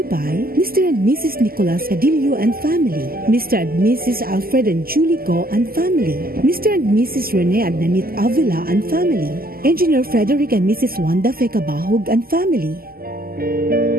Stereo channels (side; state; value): left; late; 0.43 ms